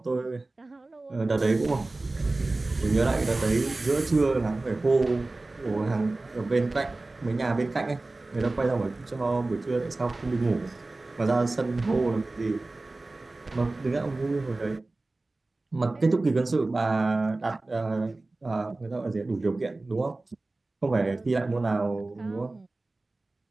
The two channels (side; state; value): left; quieter; 3.1 dB